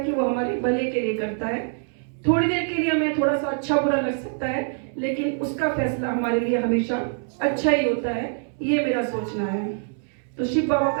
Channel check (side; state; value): left; silent; 62 dB below the other